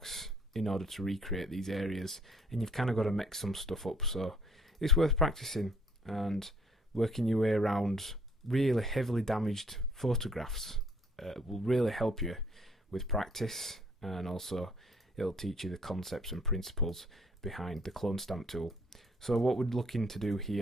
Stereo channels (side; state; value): both; normal; correlation 0.62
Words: in order to recreate these areas, and you've kind of got to mix some stuff up. So it's worth practicing and working your way around really heavily damaged photographs. Will really help you with practice, and also it'll teach you the concepts and principles behind the clone stamp tool. So what we're looking to do